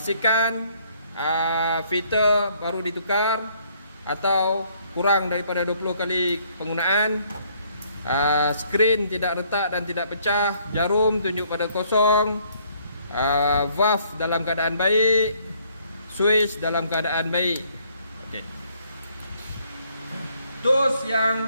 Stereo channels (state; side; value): inverted; both; correlation -0.65